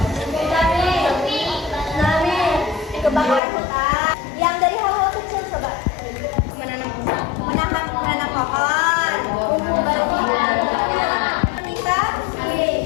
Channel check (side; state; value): right; drops out; at 3.4 s